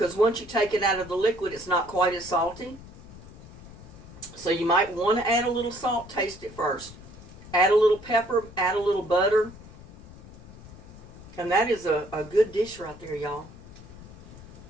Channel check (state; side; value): noise; left; rumble, 17 dB below the sound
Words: once you take it out of the liquid, it's not quite as salty. So you might want to add a little salt, taste it first. Add a little pepper, add a little butter. And that is a good dish right there, y'all.